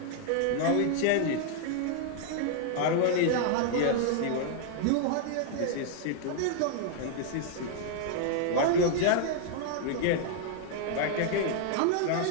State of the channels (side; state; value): both; different; correlation 0.00